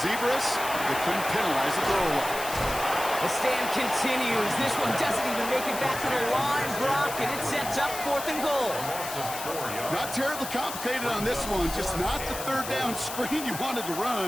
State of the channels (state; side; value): noise; left; hiss, 8 dB below the sound